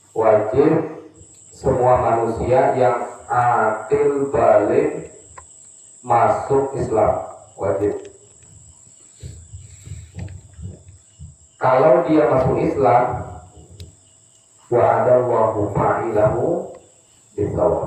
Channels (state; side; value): identical; both; correlation 1.00